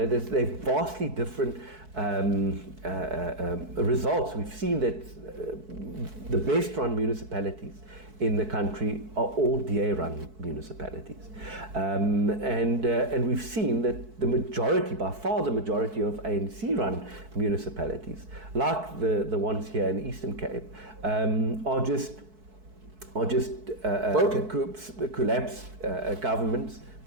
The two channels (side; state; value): left; late; 4.6 ms